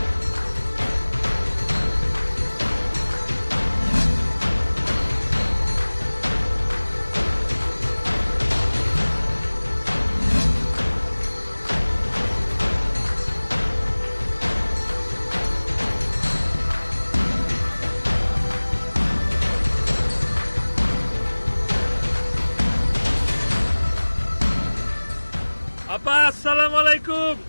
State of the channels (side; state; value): both; inverted; correlation -1.00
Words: আপা আসসালামু আলাইকুম।